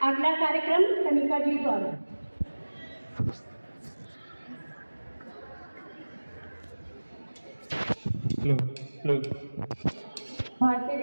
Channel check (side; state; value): both; inverted; correlation -1.00